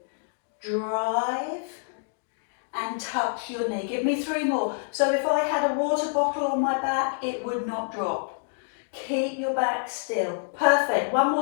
Drive and touch your knee. Give me 3 more. So if I had a water bottle on my back, it would not drop. Keep your back still. Perfect. One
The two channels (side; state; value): right; silent; digital silence